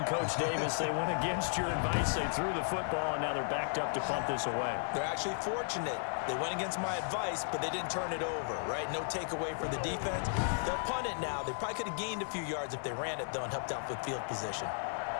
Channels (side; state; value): right; silent; digital silence